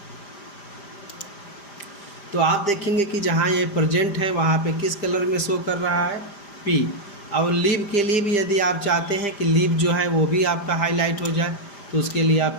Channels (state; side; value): late; right; 5.0 ms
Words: तो आप देखेंगे कि जहाँ ये प्रेजेंट है वहाँ पे किस कलर में शो कर रहा है, P। और लीव के लिए भी यदि आप चाहते हैं कि लीव जो है वो भी आपका हाईलाइट हो जाए, तो उसके लिए आप